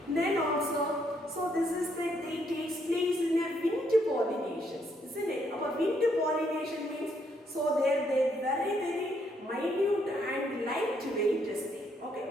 Then also, so this is that they takes place in a winter pollinations, isn't it? Our winter pollination means, so they very minute and lightweight is there.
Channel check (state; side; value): normal; both; correlation 0.72